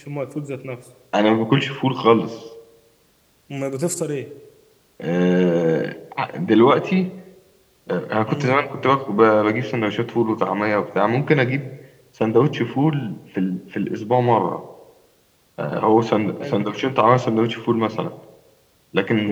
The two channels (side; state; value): both; identical; correlation 1.00